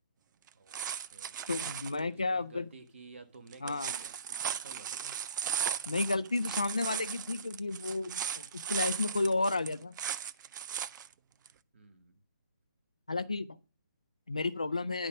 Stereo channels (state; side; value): inverted; both; correlation -0.60